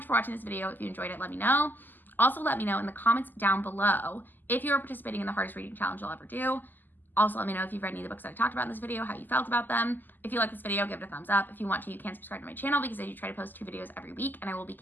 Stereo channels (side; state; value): right; late; 0.088 ms